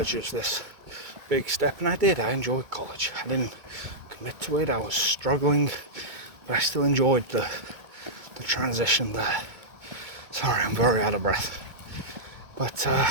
as this big step, and I did. I enjoyed college. I didn't commit to it. I was struggling, but I still enjoyed the transition there. Sorry, I'm very out of breath. But,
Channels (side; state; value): left; late; 2.2 ms